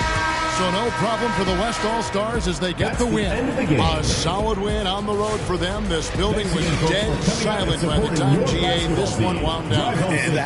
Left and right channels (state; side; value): identical; both; correlation 1.00